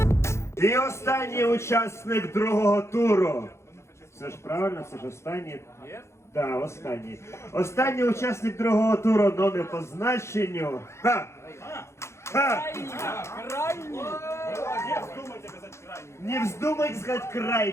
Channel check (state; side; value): late; right; 0.13 ms